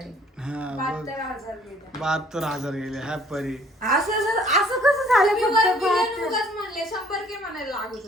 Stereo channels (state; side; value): normal; both; correlation 0.57